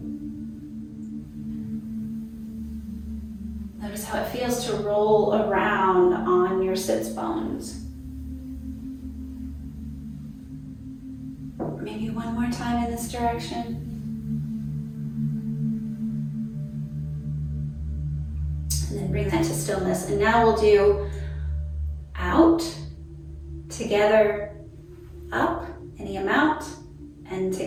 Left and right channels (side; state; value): both; identical; correlation 1.00